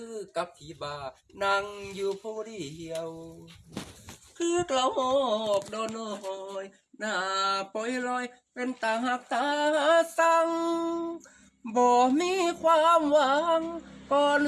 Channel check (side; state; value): both; identical; correlation 1.00